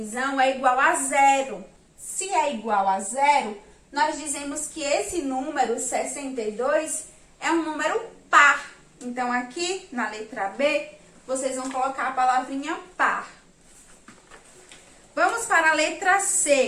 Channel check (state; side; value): identical; both; correlation 1.00